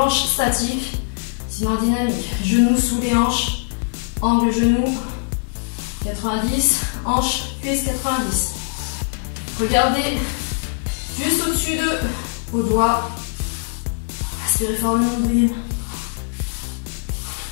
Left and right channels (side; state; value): right; silent; digital silence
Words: statique, sinon dynamique. Genoux sous les hanches, angle genou 90, hanche, cuisse 90. Regardez juste au-dessus de vos doigts. Aspirez fort le nombril.